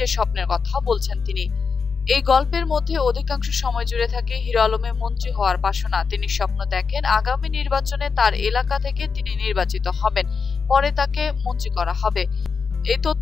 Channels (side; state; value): right; quieter; 5.4 dB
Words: স্বপ্নের কথা বলছেন তিনি। এই গল্পের মধ্যে অধিকাংশ সময় জুড়ে থাকে হিরো আলমের মন্ত্রী হওয়ার বাসনা। তিনি স্বপ্ন দেখেন আগামী নির্বাচনে তার এলাকা থেকে তিনি নির্বাচিত হবেন, পরে তাকে মন্ত্রী করা হবে। এই